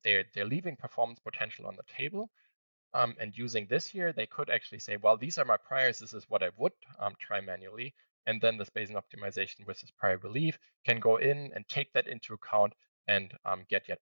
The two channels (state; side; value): inverted; both; correlation -1.00